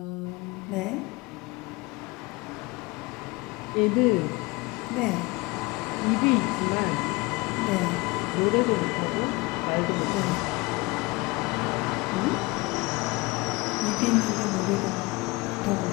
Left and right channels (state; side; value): quieter; right; 23.9 dB